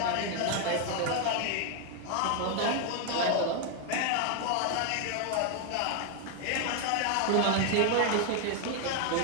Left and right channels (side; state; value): both; different; correlation 0.01